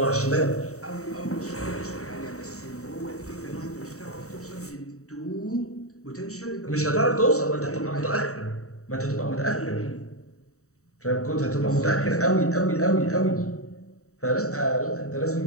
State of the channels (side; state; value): right; late; 0.65 ms